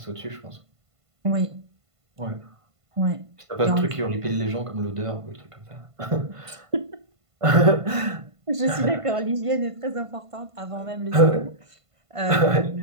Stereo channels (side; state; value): left; late; 1.5 ms